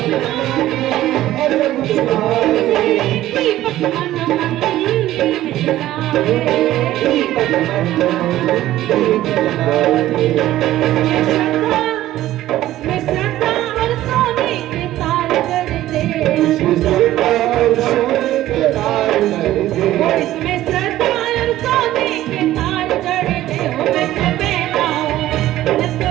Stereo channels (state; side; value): quieter; left; 14.4 dB